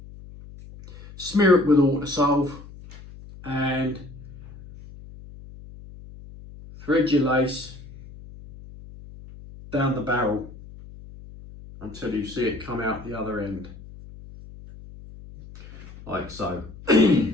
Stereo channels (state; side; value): noise; left; hum, 17 dB below the sound